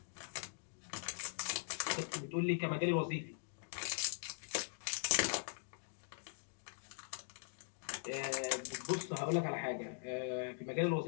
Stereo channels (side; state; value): right; silent; digital silence